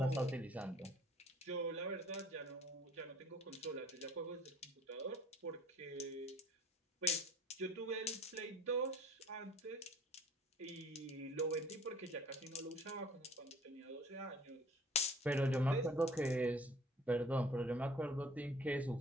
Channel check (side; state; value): both; normal; correlation 0.52